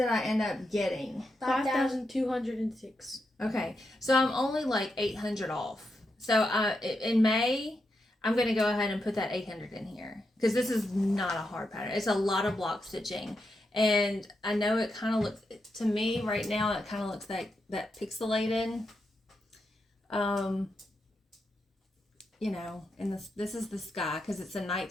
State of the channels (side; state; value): both; normal; correlation 0.85